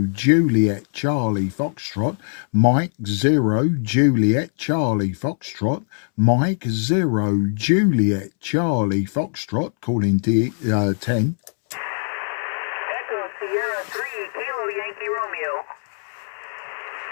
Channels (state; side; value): silent; right; 64 dB below the other